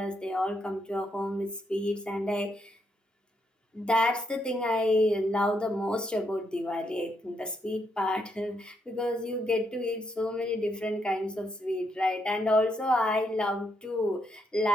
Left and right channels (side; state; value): both; normal; correlation 0.78